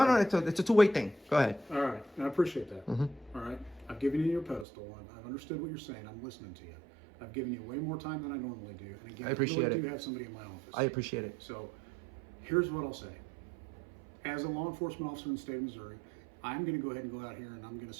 All right. it's a two-way thing. Go ahead. All right. And I appreciate that. All right. I've given you your pedestal. I've understood what you're saying. I'm listening to you. I've given you way more time than I normally do. And again, I appreciate really it. do have somebody in my office. I appreciate it. So here's what I'll say. As a law enforcement officer in the state of Missouri, I'm going to go ahead and go out here and I'm going to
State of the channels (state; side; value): drops out; left; at 4.7 s